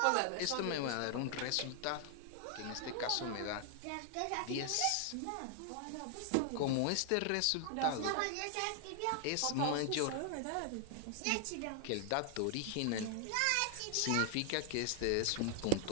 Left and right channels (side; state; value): both; different; correlation 0.00